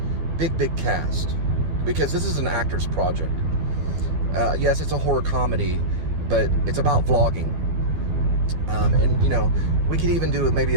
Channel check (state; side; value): late; left; 12 ms